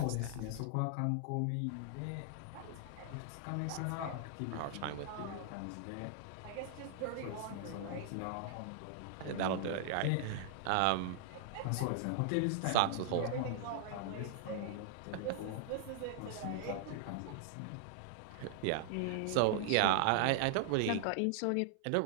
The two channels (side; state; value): both; different; correlation -0.01